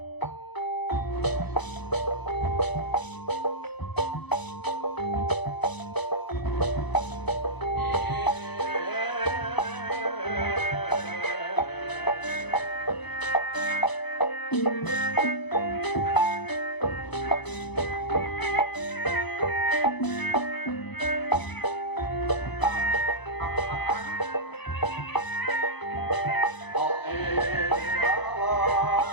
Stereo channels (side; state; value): right; late; 0.99 ms